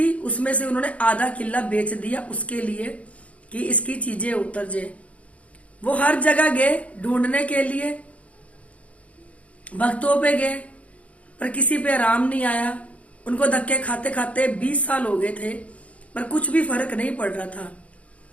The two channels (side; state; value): right; late; 0.065 ms